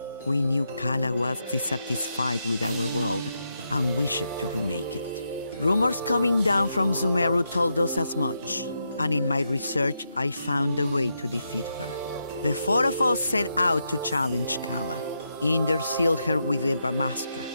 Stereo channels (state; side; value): inverted; both; correlation -0.83